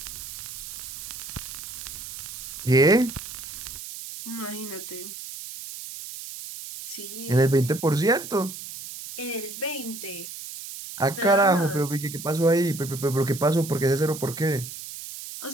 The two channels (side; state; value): right; noise; hiss, 10 dB below the sound